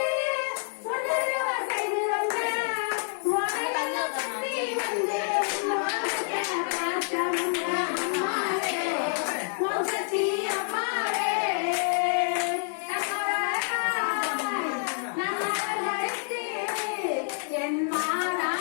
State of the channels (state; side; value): silent; right; 59 dB below the other